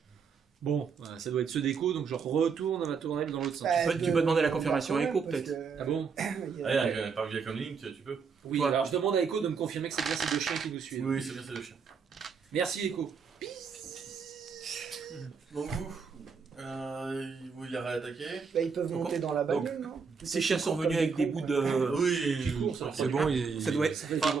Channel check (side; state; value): left; quieter; 5.7 dB